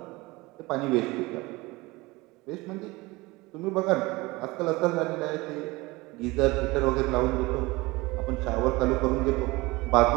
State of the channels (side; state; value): left; quieter; 22.2 dB